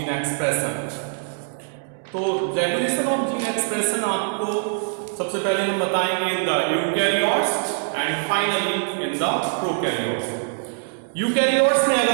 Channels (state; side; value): silent; left; digital silence